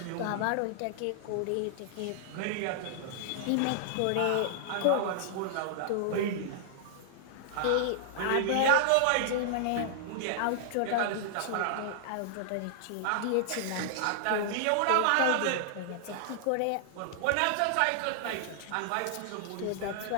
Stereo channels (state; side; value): different; both; correlation -0.01